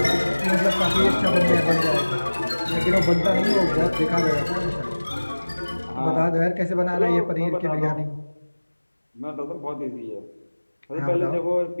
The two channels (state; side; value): inverted; both; correlation -1.00